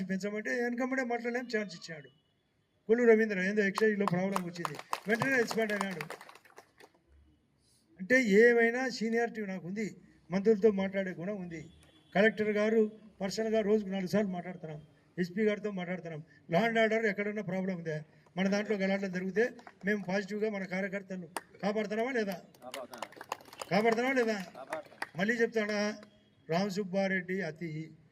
పెంచమంటే వెనకమ్మడే మాట్లాడలేం ఛాన్స్ ఇచ్చాడు. కొల్లు రవీంద్ర ఏందో ఎక్సైజ్లో ప్రాబ్లం వచ్చింది, వెంటనే ఎక్స్పైర్డ్ అయినాడు. అంటే ఏమైనా సీనియారిటీ నాకు ఉంది, మంత్రులతో మాట్లాడే గుణం ఉంది. కలెక్టర్ గారు పర్సనల్గా రోజుకు 4 సార్లు మాట్లాడుతున్నాం, ఎస్పీ గారితో మాట్లాడుతున్నాం. లా అండ్ ఆర్డర్ ఎక్కడన్నా ప్రాబ్లం ఉందా, మన దాంట్లో గలాటలు జరిగితే మేము పాజిటివ్గా మన కార్యకర్తలు కాపాడుతున్నామా లేదా? మళ్ళీ చెప్తాడా, రామ్ సుబ్బారెడ్డి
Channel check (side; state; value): both; identical; correlation 1.00